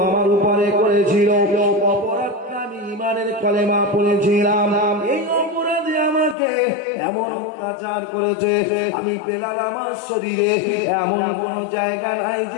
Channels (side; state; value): right; drops out; at 6.4 s